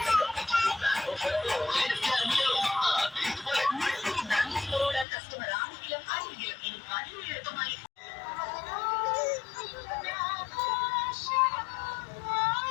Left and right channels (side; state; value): right; drops out; at 5.1 s